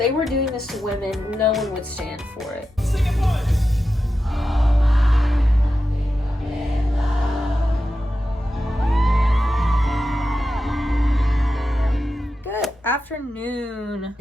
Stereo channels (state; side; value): normal; both; correlation 0.90